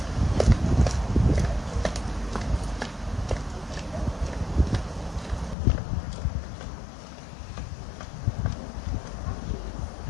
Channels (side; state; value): right; drops out; at 5.6 s